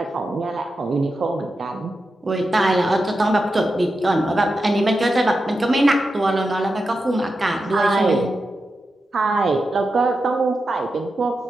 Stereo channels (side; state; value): both; normal; correlation 0.89